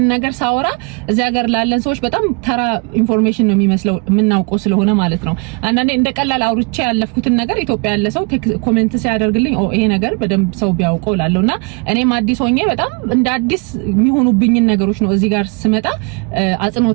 ነገር ሳወራ እዚህ ሀገር ላለን ሰዎች በጣም ተራ ኢንፎርሜሽን ነው የሚመስለው የምናውቀው ስለሆነ ማለት ነው። አንዳንዴ እንደ ቀላል አውርቼ ያለፍኩትን ነገር ኢትዮጵያ ያለ ሰው ኮሜንት ሲያደርግልኝ ይሄ ነገር በደንብ ሰው ቢያውቀው ላለውና እኔም አዲስ ሆኜ በጣም እንደ አዲስ የሚሆኑብኝ ነገሮች ነው እዚህ ጋር ስመጣ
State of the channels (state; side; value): quieter; left; 31.4 dB